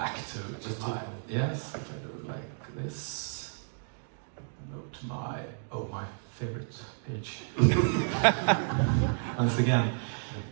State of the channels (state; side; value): silent; left; digital silence